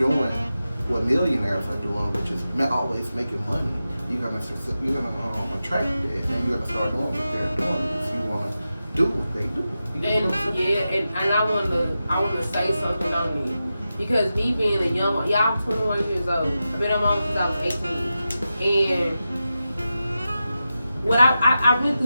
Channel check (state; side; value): inverted; both; correlation -0.92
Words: what millionaires are doing, which is always making money, you're gonna attract that, and you're gonna start doing what they're doing if you want to do what they do. And I want to say something on me, because me being a young, I'm 21 years old. I've been on my own since I was 18, and what I went